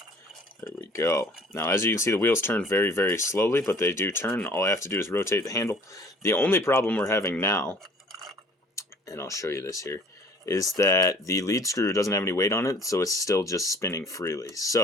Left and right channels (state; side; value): normal; both; correlation 0.52